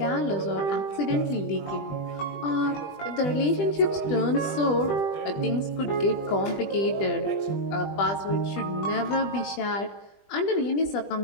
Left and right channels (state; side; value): late; right; 20 ms